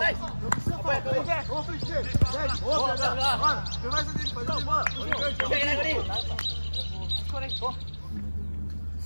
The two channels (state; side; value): inverted; both; correlation -1.00